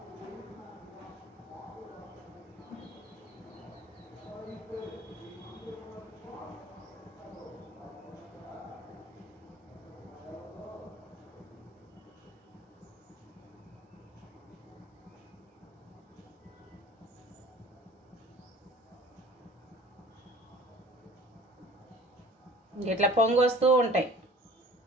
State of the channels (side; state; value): both; normal; correlation 0.47